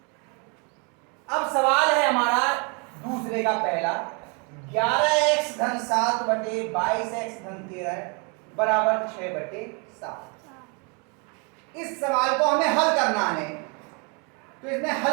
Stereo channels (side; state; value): left; quieter; 34.1 dB